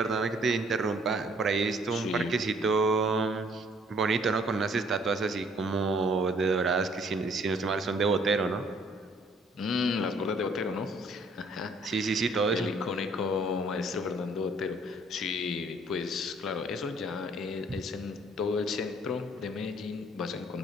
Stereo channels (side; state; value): both; normal; correlation 0.61